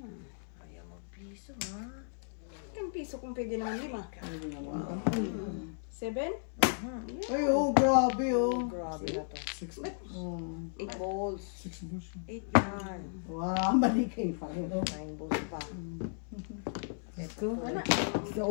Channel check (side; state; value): right; silent; digital silence